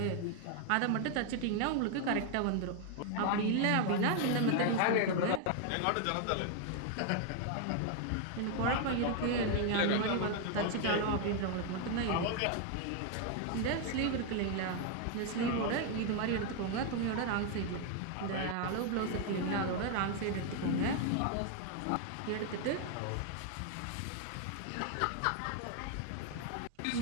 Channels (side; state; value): both; different; correlation 0.00